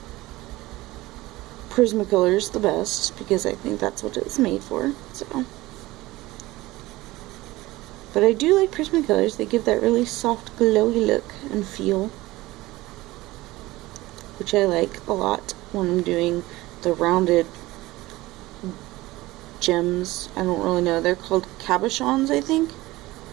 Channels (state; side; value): quieter; left; 18.9 dB